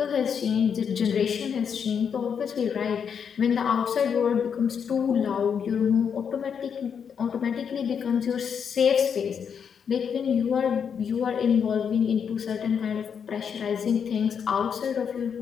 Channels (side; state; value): right; quieter; 7.2 dB